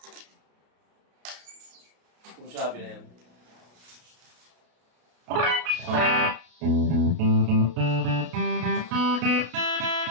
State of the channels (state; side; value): late; left; 33 ms